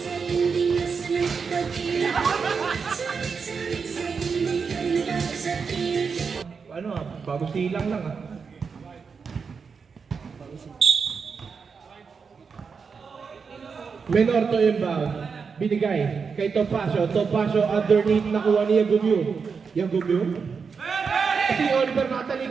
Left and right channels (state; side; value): quieter; left; 5.5 dB